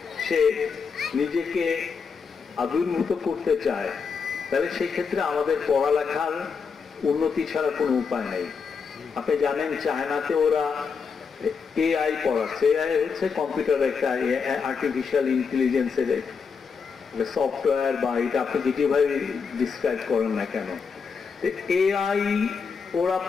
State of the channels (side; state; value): right; quieter; 5.6 dB